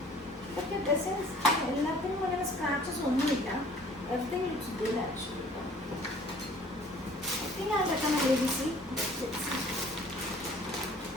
ഇതൊക്കെ ഡ്രസ്സസ് എല്ലാത്തിനും അങ്ങനെ സ്ക്രാച്ചസ് ഒന്നുമില്ല. Everything looks good actually. I think I'll become a baby see.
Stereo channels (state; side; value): normal; both; correlation 0.52